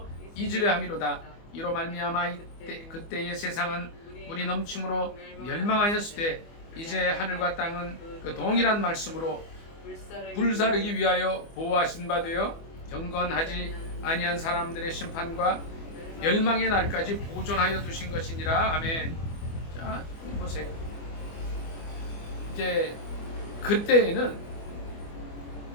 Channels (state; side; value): late; right; 24 ms